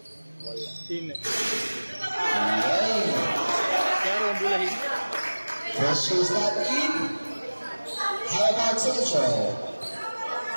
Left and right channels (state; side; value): inverted; both; correlation -1.00